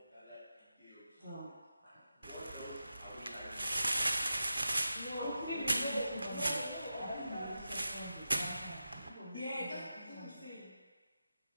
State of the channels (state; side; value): inverted; both; correlation -0.90